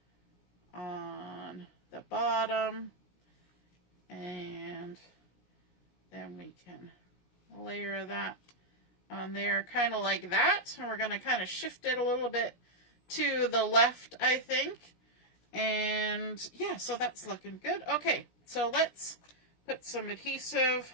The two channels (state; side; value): late; right; 17 ms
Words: on the bottom, and then we can layer that on there kind of like that. And we're going to kind of shift it a little bit to the left, I think. And yeah, so that's looking good. Okay, so let's put some adhesive